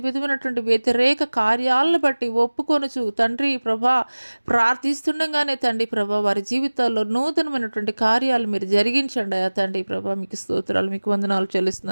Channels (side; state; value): both; inverted; correlation -1.00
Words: విధమైనటువంటి వ్యతిరేక కార్యాలను బట్టి ఒప్పుకొనుచు తండ్రి ప్రభా ప్రార్థిస్తుండగానే తండ్రి ప్రభా వారి జీవితాల్లో నూతనమైనటువంటి కార్యాలు మీరు జరిగించండి అయ్యా తండ్రి ప్రభా. మీకు స్తోత్రాలు, మీకు వందనాలు